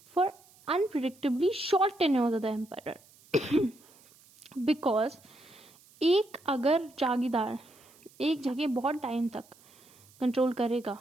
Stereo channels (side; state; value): right; noise; hiss, 27 dB below the sound